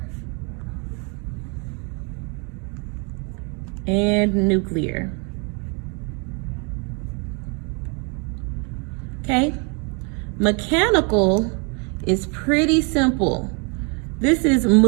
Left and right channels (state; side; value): quieter; left; 34.6 dB